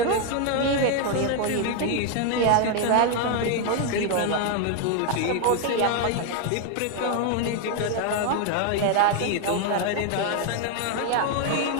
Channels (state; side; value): different; both; correlation 0.01